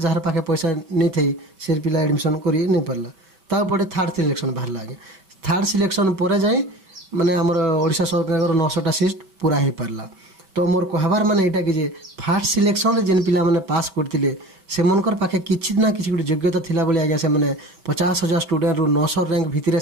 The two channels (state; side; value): late; left; 5.2 ms